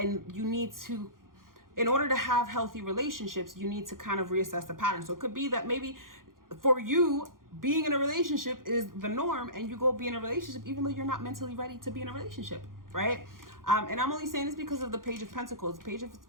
you need to, in order to have healthy relationships, you need to kind of reassess the pattern. So it could be that maybe for you, being in a relationship is the norm, and you go be in a relationship even though you're not mentally ready to be in a relationship, right? And I'm only saying this because of the Page of Pentacles. Pages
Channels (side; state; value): left; late; 0.91 ms